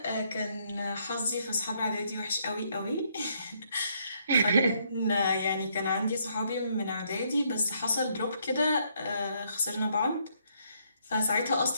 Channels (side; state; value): both; inverted; correlation -0.71